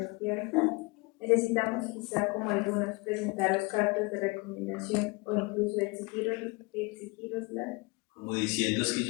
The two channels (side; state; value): right; quieter; 26.8 dB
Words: Necesitamos quizá como algunos presentaros cartas de recomendación o incluso exigiroslas. Como diciendo, es que